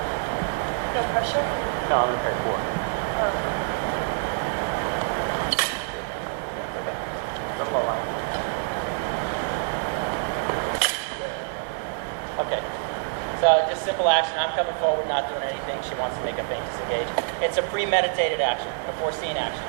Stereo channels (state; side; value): silent; left; digital silence